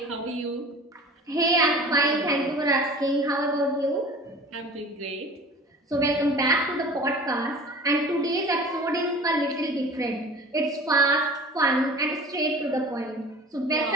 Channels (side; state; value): both; normal; correlation 0.41